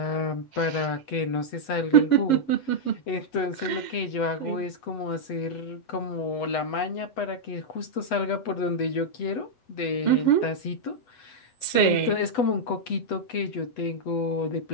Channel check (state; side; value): late; right; 8.1 ms